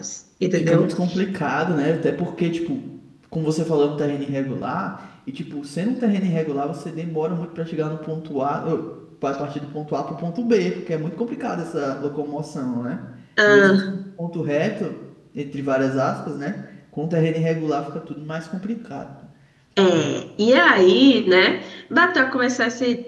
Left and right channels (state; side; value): identical; both; correlation 1.00